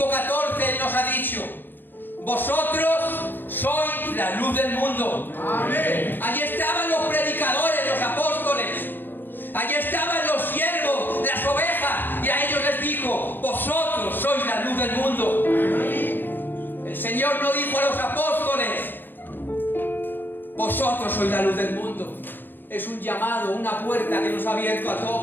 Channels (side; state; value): right; late; 0.094 ms